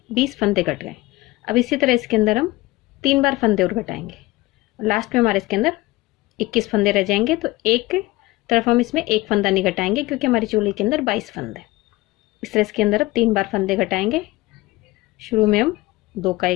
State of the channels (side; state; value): right; quieter; 19.7 dB